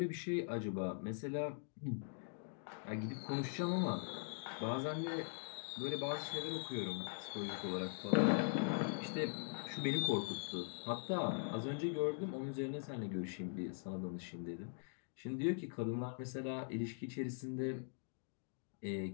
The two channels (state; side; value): silent; right; digital silence